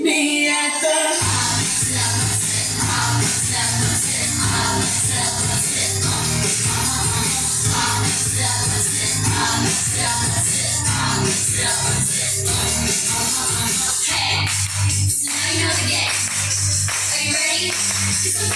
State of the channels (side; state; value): both; identical; correlation 1.00